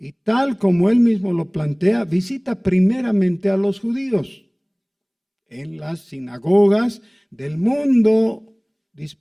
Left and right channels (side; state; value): both; identical; correlation 1.00